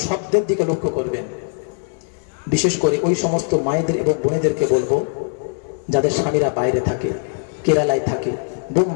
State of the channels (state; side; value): silent; right; 62 dB below the other